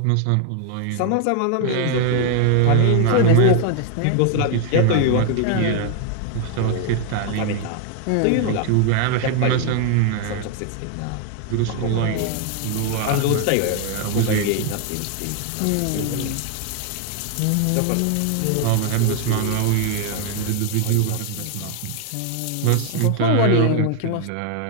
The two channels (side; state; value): both; different; correlation 0.00